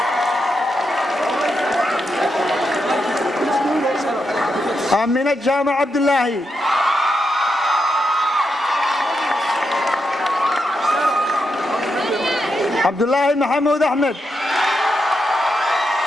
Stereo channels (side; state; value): both; normal; correlation 0.84